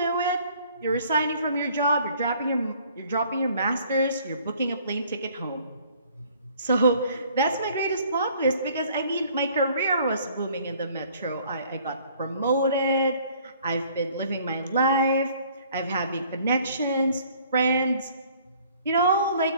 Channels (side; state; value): both; inverted; correlation -0.57